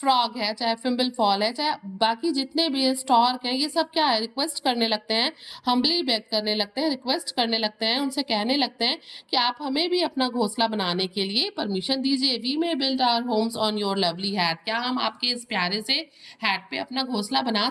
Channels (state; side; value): identical; both; correlation 1.00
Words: है, चाहे फिम्बल फॉल है, चाहे बाकी जितने भी स्टॉर्क हैं, ये सब क्या है? रिक्वेस्ट करने लगते हैं, हम्बली बेग करने लगते हैं, रिक्वेस्ट करने लगते हैं, उनसे कहने लगते हैं कि आप हमें भी अपना घोंसला बनाने के लिए परमिशन दीजिए। We may build our homes on your lovely hat, क्या हम आपके इस प्यारे से हैट पे अपना घोंसला बना